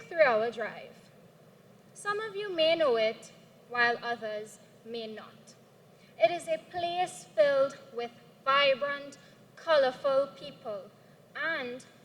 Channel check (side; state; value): both; identical; correlation 1.00